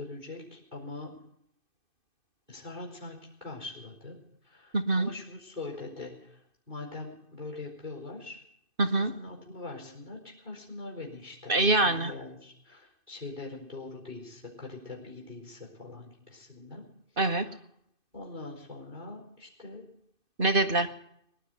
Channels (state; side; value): late; left; 2.5 ms